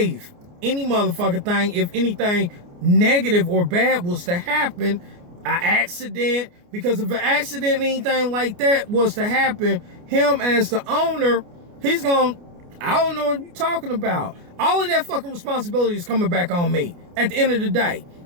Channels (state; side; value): late; left; 29 ms